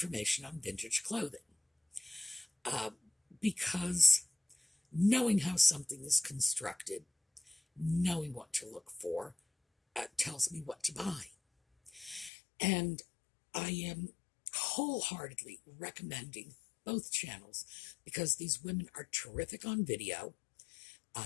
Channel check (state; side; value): drops out; right; at 12.3 s